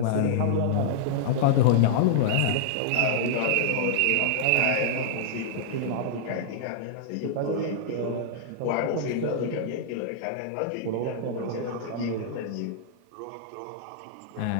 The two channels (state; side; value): different; both; correlation -0.01